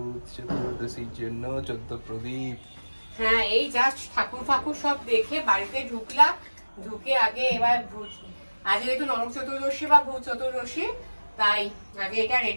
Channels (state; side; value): inverted; both; correlation -1.00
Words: চতুর্দশীর জন্য 14 প্রদীপ। হ্যাঁ, এই জাস্ট ঠাকুর ফাকুর সব দেখে বাড়িতে ঢুকলাম। ঢুকে আগে এবার আজ যেহেতু নরক চতুর্দশী বা ভূত চতুর্দশী, তাই আগে এটা